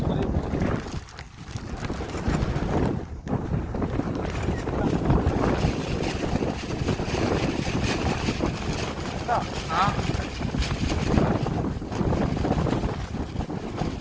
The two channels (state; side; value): identical; both; correlation 1.00